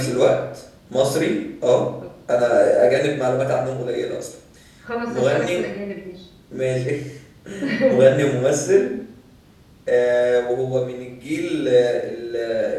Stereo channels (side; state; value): both; identical; correlation 1.00